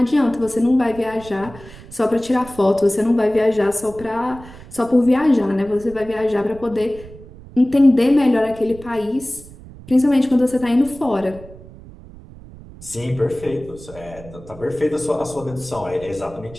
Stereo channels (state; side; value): noise; right; rumble, 18 dB below the sound